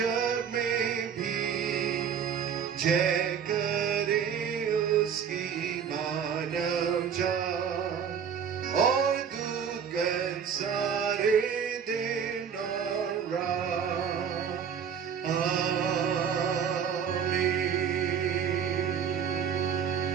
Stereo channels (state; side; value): quieter; left; 7.5 dB